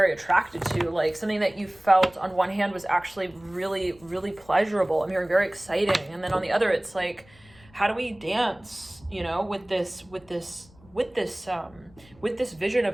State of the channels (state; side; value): noise; left; rumble, 26 dB below the sound